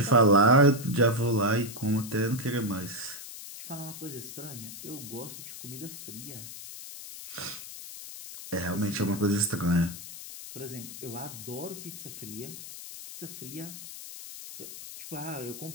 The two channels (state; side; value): noise; left; hiss, 12 dB below the sound